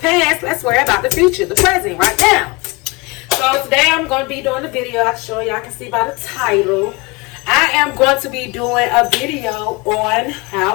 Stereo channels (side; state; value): right; quieter; 25.9 dB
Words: Let's worry about the future, the present, right now. So today I'm going to be doing a video. I'll show y'all can see by the title. I am going to be doing a video on